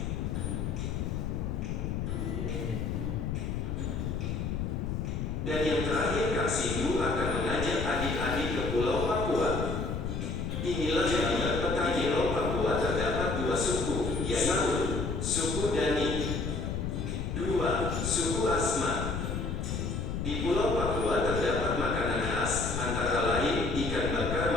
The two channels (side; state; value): left; noise; rumble, 2 dB below the sound